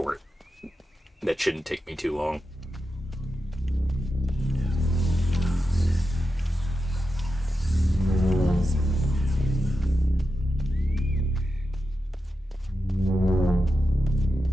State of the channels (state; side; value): normal; both; correlation 0.89